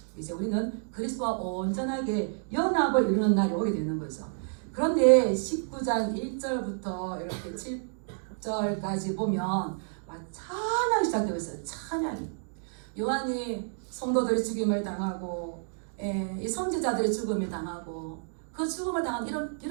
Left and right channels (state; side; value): silent; left; digital silence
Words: 이제 우리는 그리스도와 온전하게 연합을 이루는 날이 오게 되는 거죠. 그런데 19장 1절부터 이렇게 7절까지 보면 찬양이 시작되고 있어요. 찬양이. 요한이 성도들이 죽임을 당하고 이 선지자들이 죽음을 당하고 그 죽음을 당한